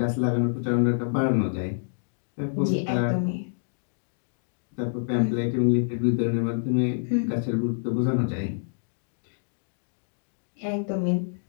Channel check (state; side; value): silent; right; digital silence